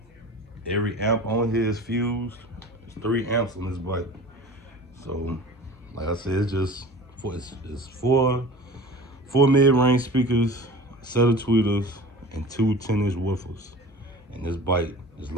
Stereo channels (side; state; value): both; normal; correlation 0.39